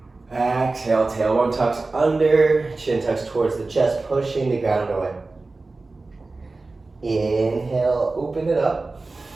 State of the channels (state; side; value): quieter; left; 3.5 dB